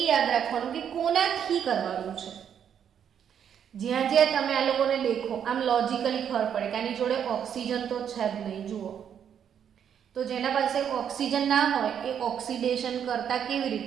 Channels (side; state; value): left; quieter; 8.6 dB